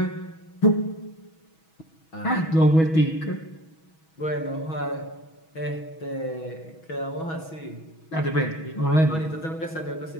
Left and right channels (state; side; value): late; right; 6.2 ms